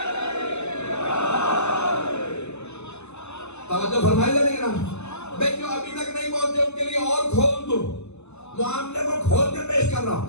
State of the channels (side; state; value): right; late; 0.81 ms